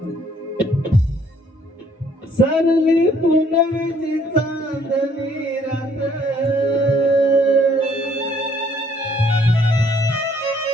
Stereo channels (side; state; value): both; normal; correlation 0.63